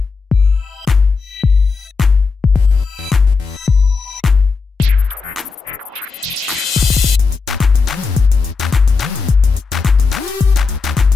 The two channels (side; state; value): right; quieter; 4.6 dB